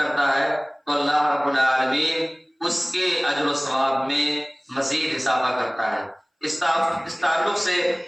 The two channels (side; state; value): both; identical; correlation 1.00